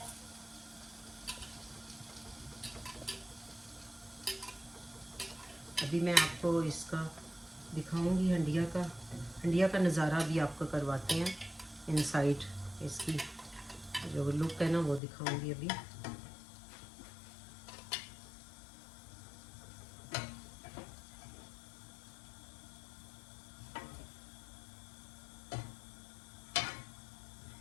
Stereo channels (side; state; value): right; drops out; at 15.0 s